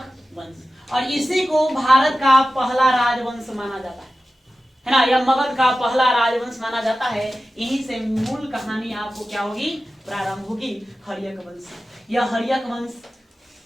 वंश, और इसी को भारत का पहला राजवंश माना जाता है ना, यह मगध का पहला राजवंश माना जाता है। यहीं से मूल कहानी आपको क्या होगी? प्रारंभ होगी हर्यक वंश। यह हर्यक वंश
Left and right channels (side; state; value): both; normal; correlation 0.94